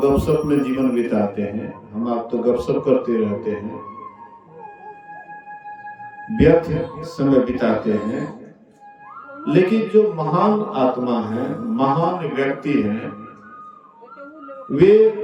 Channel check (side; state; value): both; identical; correlation 1.00